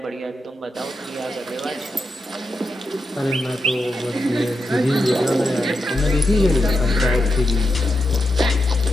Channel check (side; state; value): both; normal; correlation 0.86